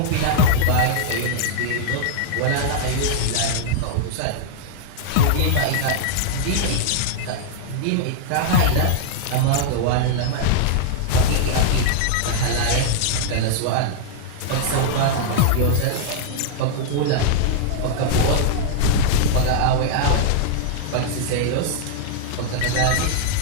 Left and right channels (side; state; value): both; different; correlation -0.01